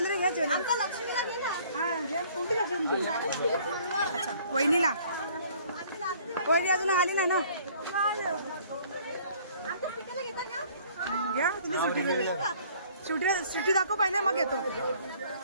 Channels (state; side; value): inverted; both; correlation -0.56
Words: घे ज्वेलरी. अच्छा वहिनीला. वहिनी अजून आली ना ना. घ्या तुम्ही सुटी सुटी दाखव पहिले मग येतो.